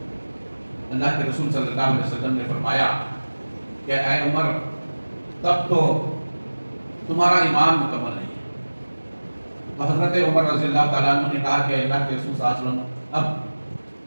اللہ کے رسول صلی اللہ علیہ وسلم نے فرمایا کہ اے عمر تب تو تمہارا ایمان مکمل نہیں ہے۔ تو حضرت عمر رضی اللہ تعالیٰ عنہ نے کہا کہ اللہ کے رسول صلی اللہ علیہ وسلم، اب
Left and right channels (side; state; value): both; inverted; correlation -1.00